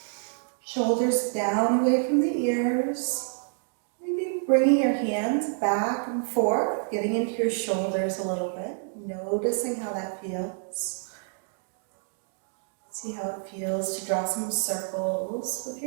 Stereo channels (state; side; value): silent; left; 55 dB below the other